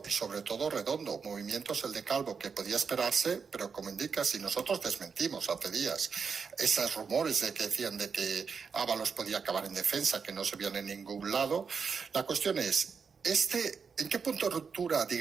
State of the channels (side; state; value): left; quieter; 5.8 dB